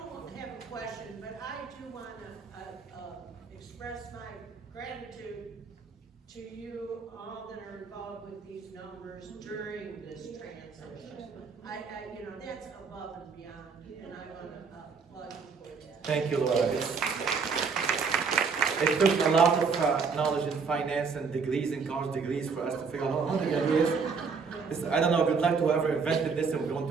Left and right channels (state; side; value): quieter; left; 5.3 dB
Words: have a question, but I do want to express my gratitude to you all that are involved with these numbers during this transition. That's above and beyond, and I want to applaud you for that. Thank you, Laura. It took a lot of knowledge in finance and degrees and college degrees for us to figure out how to do this. I don't know, good luck to whoever invented this and we're going